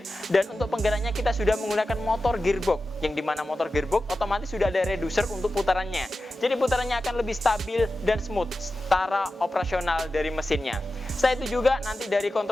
dan untuk penggeraknya kita sudah menggunakan motor gearbox yang dimana motor gearbox otomatis sudah ada reducer untuk putarannya. Jadi putarannya akan lebih stabil dan smooth secara operasional dari mesinnya. Setelah itu juga nanti dari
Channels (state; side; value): normal; both; correlation 0.93